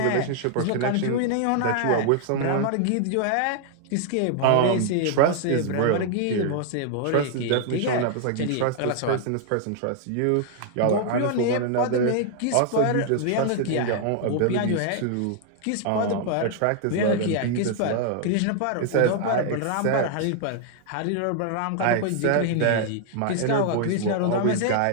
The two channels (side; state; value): both; different; correlation 0.00